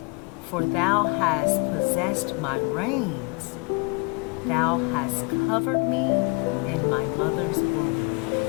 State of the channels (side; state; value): right; quieter; 29.9 dB